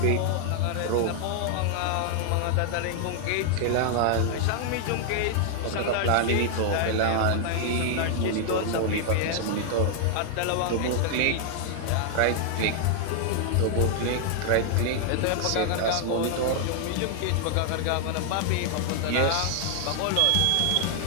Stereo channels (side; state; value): both; different; correlation 0.00